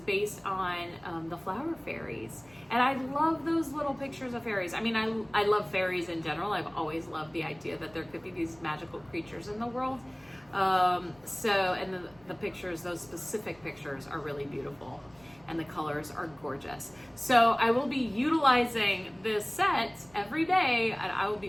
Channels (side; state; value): right; noise; rumble, 27 dB below the sound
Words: on the flower fairies. And I love those little pictures of fairies. I mean, I love fairies in general. I've always loved the idea that there could be these magical creatures in the world. And the pictures, those specific pictures are really beautiful. And the colors are gorgeous. So I will be utilizing this set every day, and I will